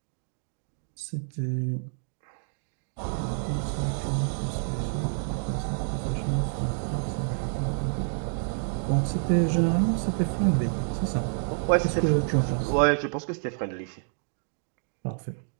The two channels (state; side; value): silent; left; digital silence